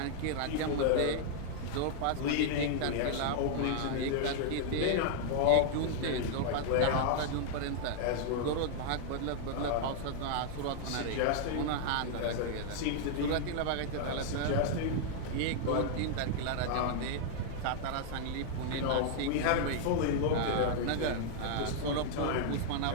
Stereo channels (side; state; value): both; different; correlation -0.01